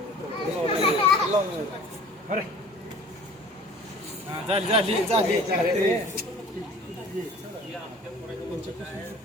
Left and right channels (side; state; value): both; normal; correlation 0.46